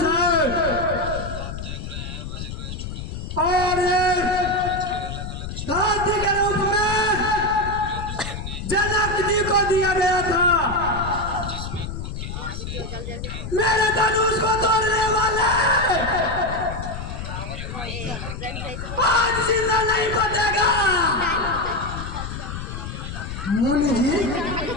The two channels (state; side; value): noise; left; rumble, 7 dB below the sound